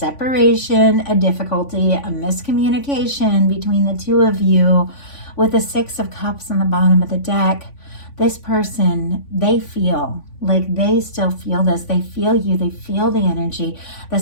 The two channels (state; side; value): late; right; 3.5 ms